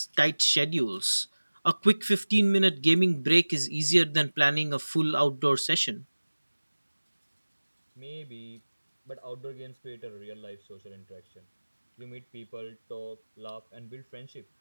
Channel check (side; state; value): both; inverted; correlation -1.00